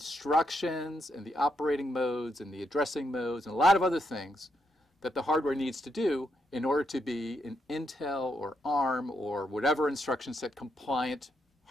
and the operating modes and the addressing modes and a lot of other things that the hardware needs to do in order to be an Intel or ARM or whatever instruction set compliant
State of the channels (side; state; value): both; normal; correlation 0.79